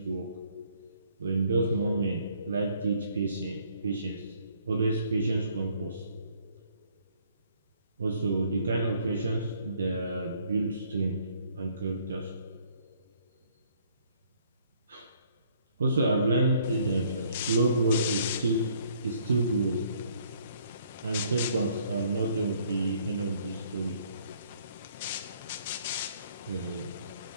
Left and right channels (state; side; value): inverted; both; correlation -0.63